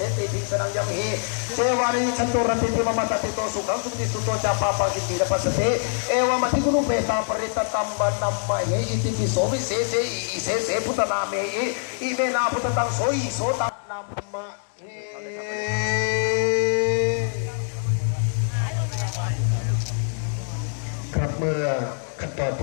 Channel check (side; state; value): right; silent; digital silence